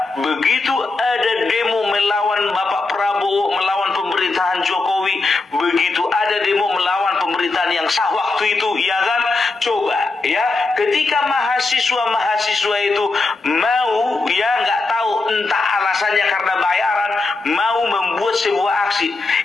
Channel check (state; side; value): quieter; right; 3.6 dB